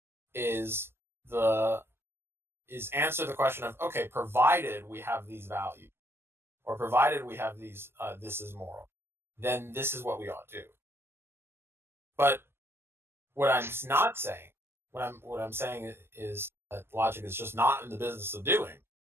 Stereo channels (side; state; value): left; late; 0.12 ms